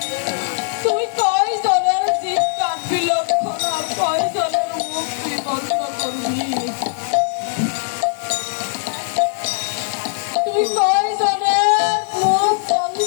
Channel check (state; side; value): silent; right; digital silence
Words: তুই কয় জনের জিভ কাটবি লক্ষণ, আর কয় জনের মুখ তুই বন্ধ করবি? তুই কয় জনের মুখ